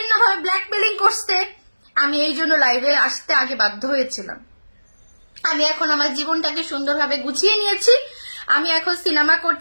ব্ল্যাকমেলিং করছে। আমি এই জন্য লাইভে আসতে আগে বাধ্য হয়েছিলাম। আমি এখন আমার জীবনটাকে সুন্দরভাবে গুছিয়ে নিয়েছি। আমি এখন সিনেমা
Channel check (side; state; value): both; inverted; correlation -1.00